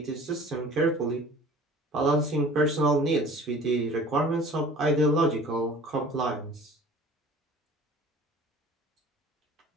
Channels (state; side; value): normal; both; correlation 0.46